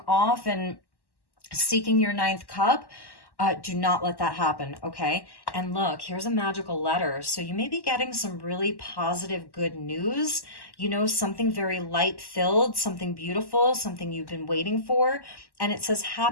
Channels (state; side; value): late; right; 1.1 ms